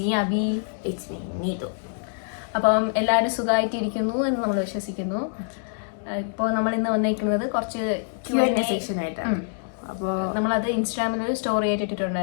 Abhi. It's me Neetu. അപ്പം എല്ലാവരും സുഖമായിട്ടിരിക്കുന്നു എന്ന് നമ്മൾ വിശ്വസിക്കുന്നു. ഇപ്പോൾ നമ്മൾ ഇന്ന് വന്നിരിക്കുന്നത് കുറച്ച് Q&A സെക്ഷൻ ആയിട്ടാണ്. അപ്പോൾ നമ്മളത് ഇൻസ്റ്റാഗ്രാമിൽ ഒരു സ്റ്റോറി ആയിട്ട്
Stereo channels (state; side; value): silent; right; digital silence